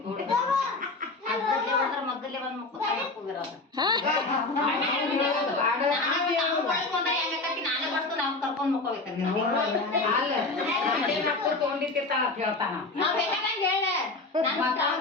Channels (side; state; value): right; quieter; 3.3 dB